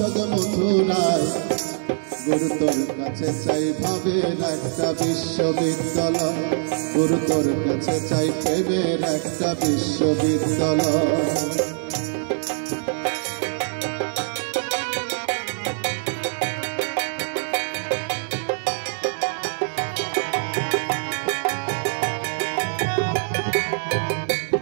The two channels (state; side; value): silent; left; 59 dB below the other